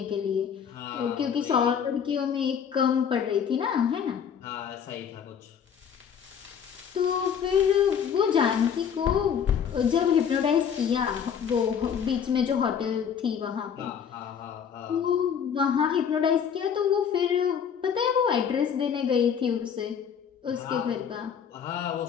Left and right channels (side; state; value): right; quieter; 7.7 dB